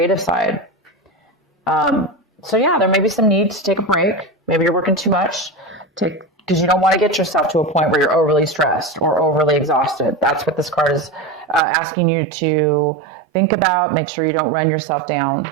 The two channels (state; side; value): drops out; left; at 11.6 s